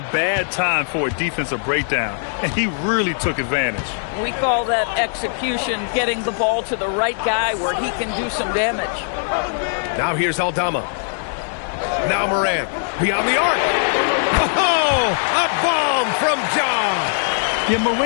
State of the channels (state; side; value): silent; right; digital silence